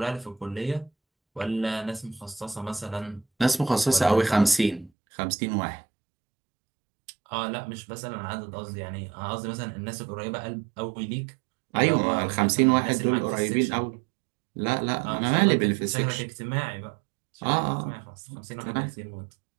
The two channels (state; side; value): drops out; left; at 4.9 s